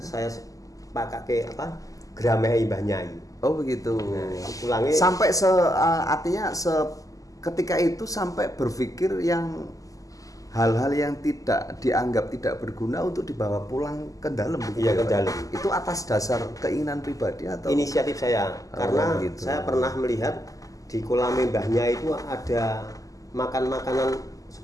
saya pakai Grameh Mbah Nyai. Oh begitu. Nah, pulangnya sampai artinya ketika itu sampai berpikir yang hal-hal yang tidak dianggap tidak berguna untuk dibawa pulang ke dalam. Iya, ke dalam. Itu atas dasar keinginan pribadi atau inisiatif saya? Karena gitu. Saya pernah melihat di kolamnya Mbah Nyai itu ada makanan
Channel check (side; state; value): right; late; 0.17 ms